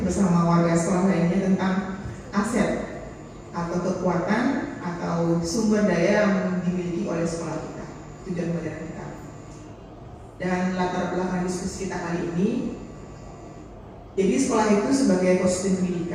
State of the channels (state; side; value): identical; both; correlation 1.00